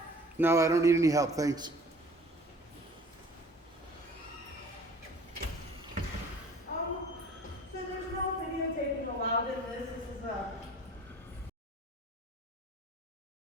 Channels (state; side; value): normal; both; correlation 0.49